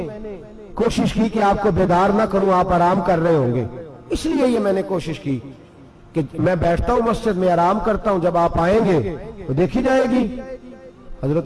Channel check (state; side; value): identical; both; correlation 1.00